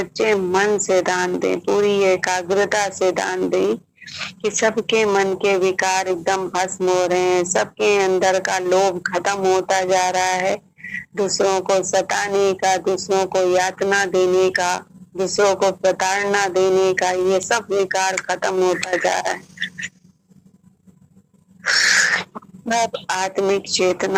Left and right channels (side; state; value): both; identical; correlation 1.00